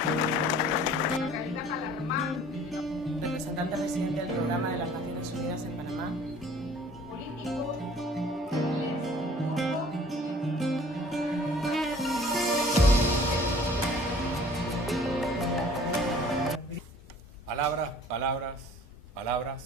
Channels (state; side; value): normal; both; correlation 0.51